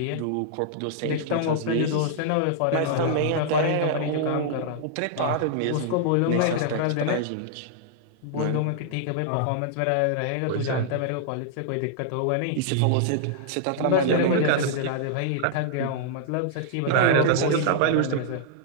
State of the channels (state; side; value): different; both; correlation -0.01